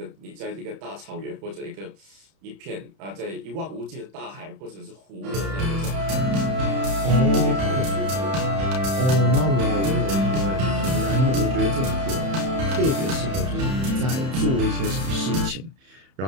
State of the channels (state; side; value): late; left; 31 ms